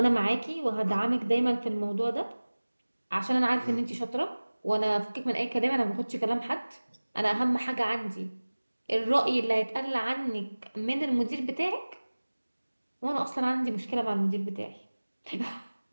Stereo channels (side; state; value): both; inverted; correlation -1.00